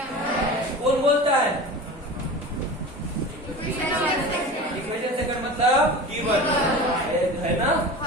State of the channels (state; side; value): normal; both; correlation 0.33